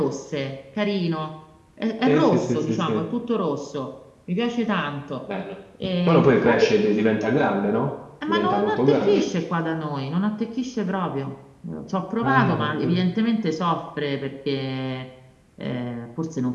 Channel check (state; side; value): identical; both; correlation 1.00